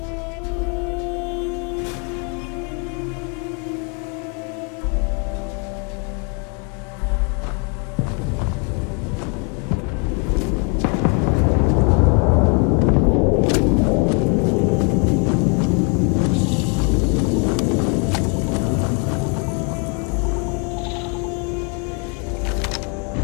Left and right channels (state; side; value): quieter; right; 36.4 dB